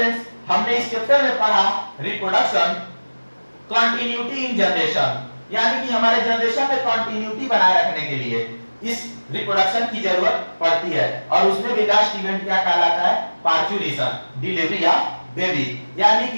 हमने इस चैप्टर में पढ़ा रिप्रोडक्शन, कंटिन्यूटी इन जनरेशन, यानी कि हमारे जनरेशन में कंटिन्यूटी बनाए रखने के लिए इस रिप्रोडक्शन की जरूरत पड़ती है। और उसमें भी लास्ट इवेंट क्या कहलाता है? Parturition, delivery of baby. यानी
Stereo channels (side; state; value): both; inverted; correlation -1.00